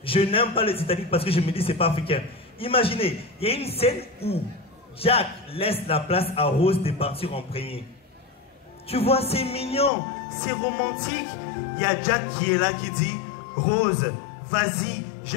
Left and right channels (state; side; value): drops out; right; at 9.9 s